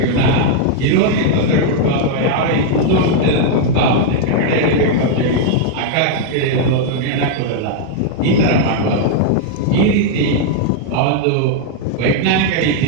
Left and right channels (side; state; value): both; different; correlation 0.00